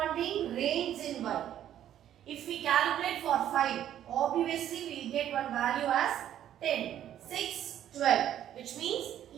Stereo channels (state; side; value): quieter; left; 11.1 dB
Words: range in y. If we calculate for 5, obviously we will get one value as 10, 6, 12. Which means